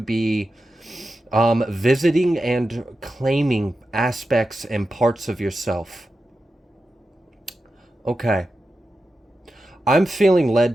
visiting and claiming aspects and parts of yourself. Okay. I'm feeling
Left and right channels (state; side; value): normal; both; correlation 0.91